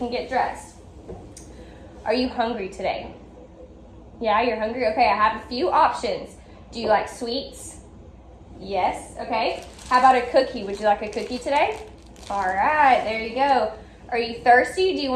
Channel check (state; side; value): identical; both; correlation 1.00